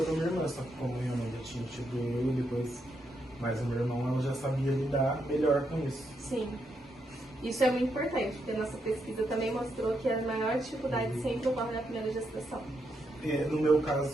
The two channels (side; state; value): both; normal; correlation 0.80